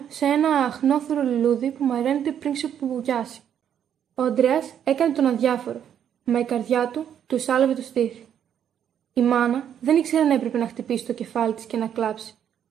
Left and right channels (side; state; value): left; quieter; 9.2 dB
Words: σε ένα αχνόθωρο λουλούδι που μαραίνεται πριν ξεπουβουγιάσει. Ο Ανδρέας έκανε τον αδιάφορο, μα η καρδιά του του σάλευε το στήθι. Η μάνα δεν ήξερε αν έπρεπε να χτυπήσει το κεφάλι της και να κλάψει,